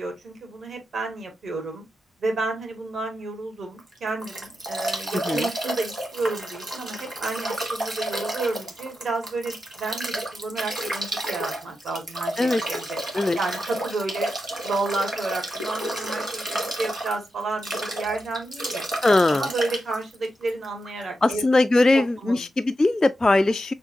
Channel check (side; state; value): both; normal; correlation 0.88